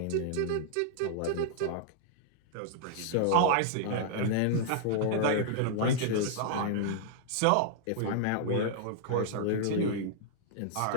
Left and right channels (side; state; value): both; different; correlation -0.01